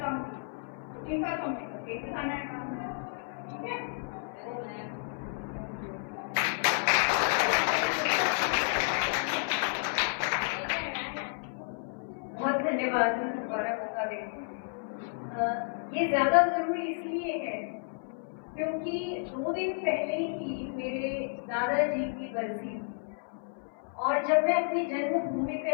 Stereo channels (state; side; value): silent; right; 57 dB below the other